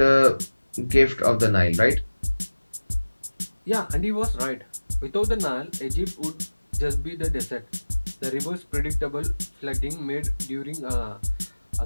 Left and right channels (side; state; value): both; inverted; correlation -1.00